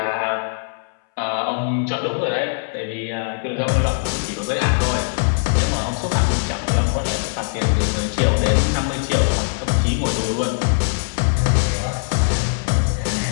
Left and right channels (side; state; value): right; silent; 65 dB below the other